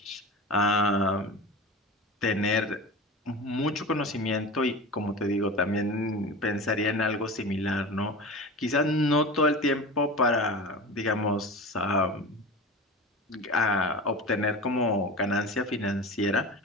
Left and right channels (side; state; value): both; normal; correlation 0.31